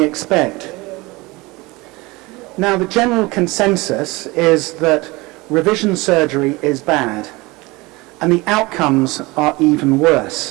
expect. Now, the general consensus is that revision surgery is bad and the outcomes are even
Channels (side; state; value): left; quieter; 23.0 dB